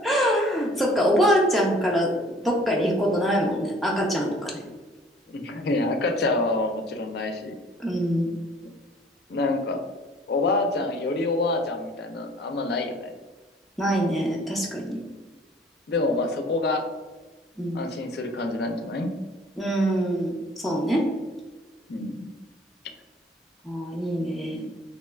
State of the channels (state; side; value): normal; both; correlation 0.54